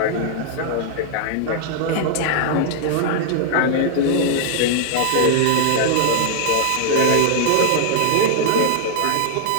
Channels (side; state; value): both; different; correlation -0.01